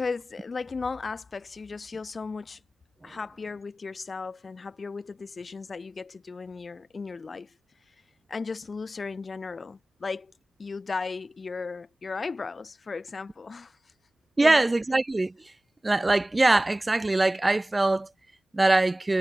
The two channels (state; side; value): normal; both; correlation 0.97